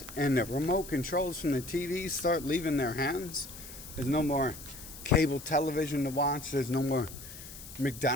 and the remote controls from the TVs start leaving their hands. There's no more cable television to watch. There's no more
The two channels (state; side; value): noise; left; hiss, 14 dB below the sound